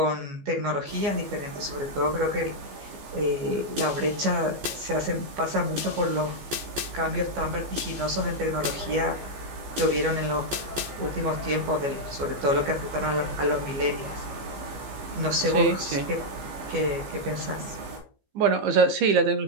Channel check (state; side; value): late; left; 15 ms